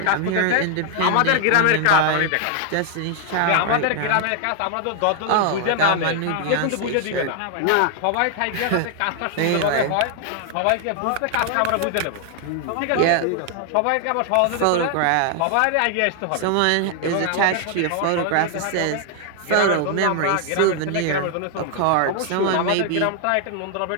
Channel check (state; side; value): different; both; correlation 0.00